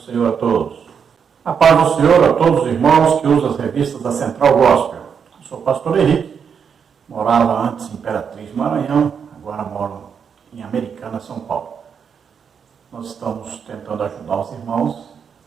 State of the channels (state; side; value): quieter; left; 6.9 dB